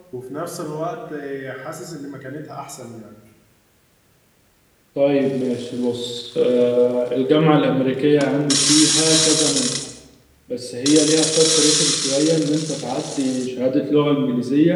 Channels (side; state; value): both; identical; correlation 1.00